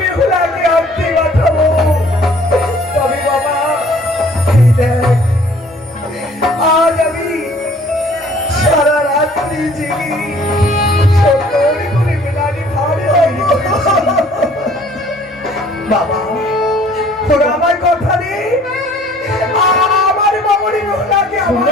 বেহুলাকে আনতে পাঠাবো। তবে বাবা, এই দেখ, আজ আমি সারা রাত্রি জেগে সুন্দর করে মেলানির হাড়ি তৈরি করেছি। বাবা, তোরা আমার কথা দে, আমার মামুনি বেহুলাকে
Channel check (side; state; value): both; normal; correlation 0.55